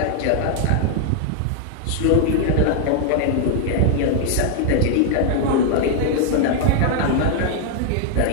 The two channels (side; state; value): both; different; correlation -0.01